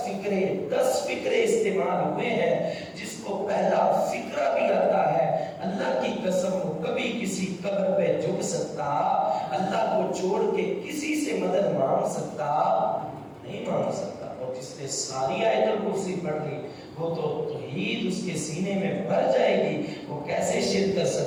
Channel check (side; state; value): both; identical; correlation 1.00